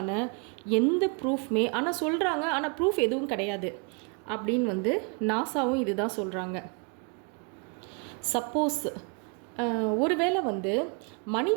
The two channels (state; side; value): quieter; left; 34.6 dB